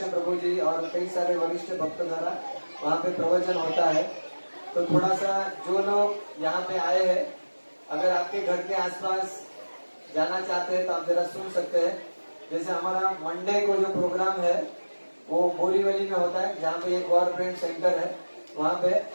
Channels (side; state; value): both; inverted; correlation -1.00